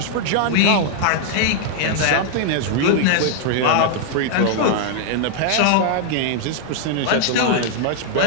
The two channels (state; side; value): different; both; correlation 0.00